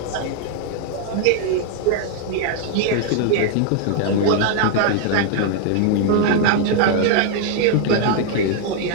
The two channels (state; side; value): different; both; correlation 0.00